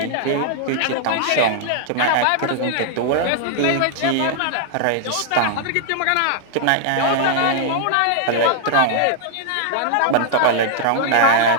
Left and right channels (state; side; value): different; both; correlation 0.00